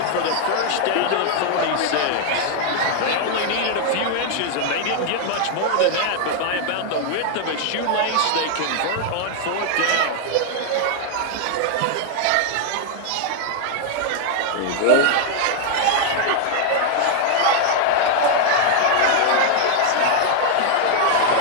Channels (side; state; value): both; different; correlation 0.00